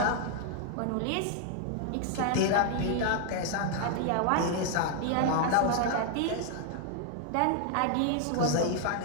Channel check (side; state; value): both; different; correlation 0.00